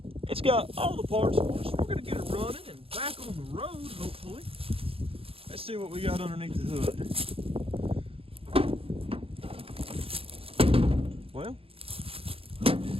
It's got all the parts for us. We're gonna get it running and back on the road, hopefully. Let's see what we got underneath the hood. Well,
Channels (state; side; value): late; left; 0.27 ms